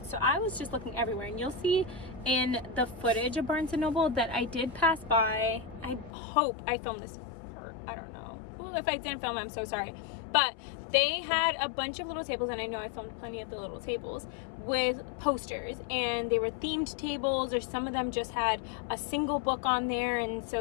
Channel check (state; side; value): drops out; right; at 6.1 s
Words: so I was just looking everywhere, and you'll see in the footage of Barnes & Noble that I did pass by. I hope I filmed this, or I don't know. Ooh, if I didn't film, I'm so sorry. But they had a bunch of little tables, and I know I filmed plenty of the little tables with posters, and they were themed tables, or some of them just had a single book on there, and